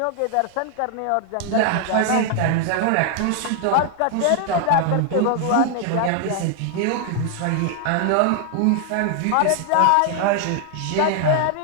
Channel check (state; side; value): different; both; correlation 0.00